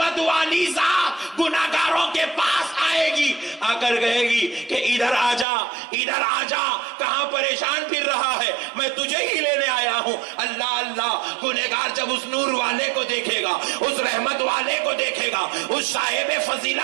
والی ذات گناہگاروں کے پاس آئے گی، آ کر کہے گی کہ ادھر آ جا، کہاں پریشان پھر رہا ہے، میں تجھے ہی لینے آیا ہوں۔ اللہ اللہ، گنہگار جب اس نور والے کو دیکھے گا، اس رحمت والے کو دیکھے گا، اس صاحب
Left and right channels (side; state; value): left; drops out; at 5.5 s